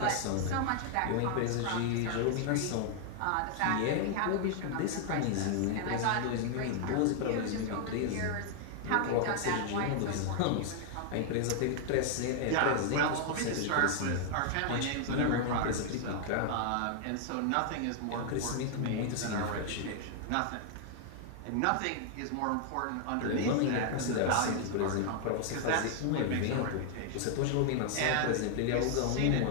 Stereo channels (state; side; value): different; both; correlation 0.00